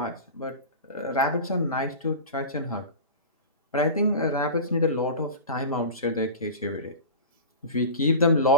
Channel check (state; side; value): inverted; both; correlation -0.30